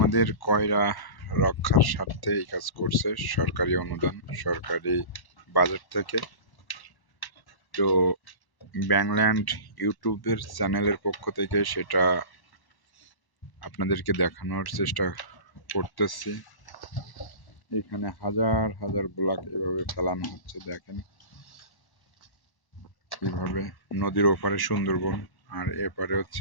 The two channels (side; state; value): right; late; 1.1 ms